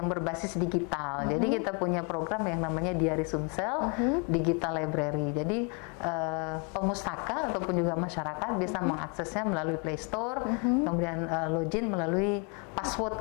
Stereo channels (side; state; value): right; quieter; 35.4 dB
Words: berbasis digital. Jadi kita punya program yang namanya Diari Sumsel Digital Library. Jadi pemustaka ataupun juga masyarakat bisa mengaksesnya melalui Play Store, kemudian login melalui